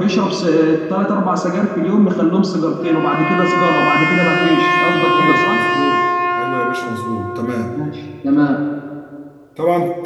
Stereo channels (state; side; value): identical; both; correlation 1.00